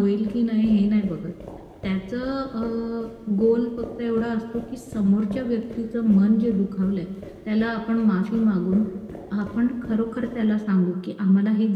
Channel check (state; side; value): identical; both; correlation 1.00